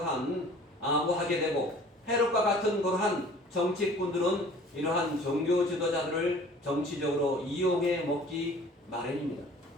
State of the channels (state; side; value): normal; both; correlation 0.48